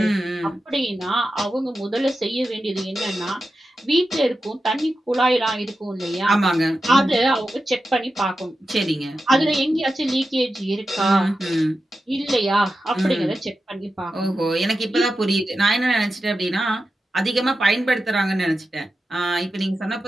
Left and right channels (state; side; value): normal; both; correlation 0.91